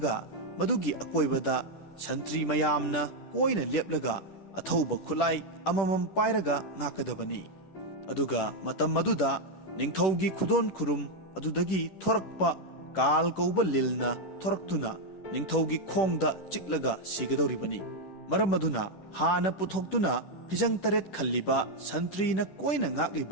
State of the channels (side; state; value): right; late; 10 ms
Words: मदुगी अकोइबदा संत्री मयामना कोइना लेपलगा अथौबा खुलाई अममम पाइरगा ngakadabani। अदुगा मतम मदुदा निंगथौगी खुदोन खुरुम अदुदगी थोरकपा काल कौबा लिलना थोरक्तुना निंगथौगी खोंगदा चिकलगा सिगदौरिबनी। मरम मदुना हाना पुथोक्तुना फिजंग तरेट खल्लिबा संत्रीना कोइना